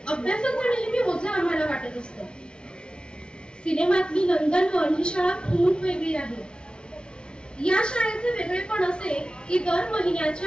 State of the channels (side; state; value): right; late; 0.055 ms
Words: अभ्यासाचं नेहमी ओझं आम्हाला वाटत असतं. सिनेमातली नंदनवन ही शाळा खूप वेगळी आहे. या शाळेचे वेगळेपण असे की दर